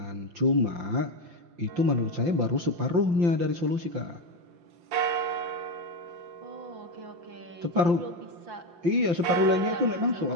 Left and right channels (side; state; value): left; late; 5.8 ms